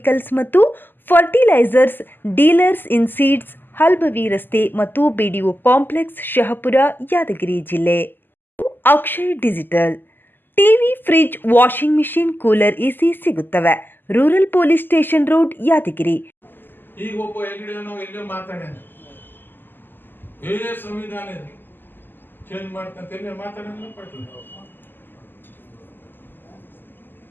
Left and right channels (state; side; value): late; right; 0.093 ms